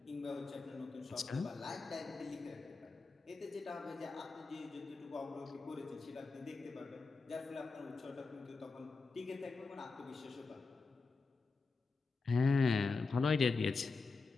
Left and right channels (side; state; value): right; quieter; 4.2 dB